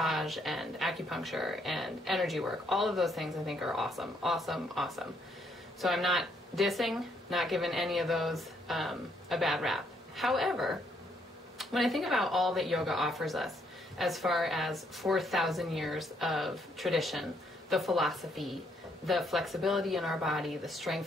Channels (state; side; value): normal; both; correlation 0.71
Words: and acupuncture and energy work. All of those things I think are awesome, awesome, awesome. So I'm not dissing, not giving any of those a bad rap. However, when I think about all that yoga offers us as far as 4,000 years of tradition, the philosophy, the flexibility in our body, the